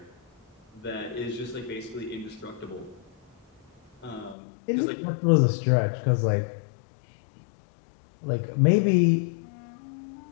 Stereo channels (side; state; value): right; drops out; at 4.4 s